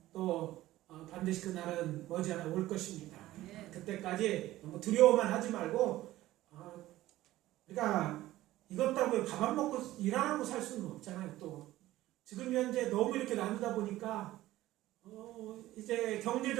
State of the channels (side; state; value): left; quieter; 15.8 dB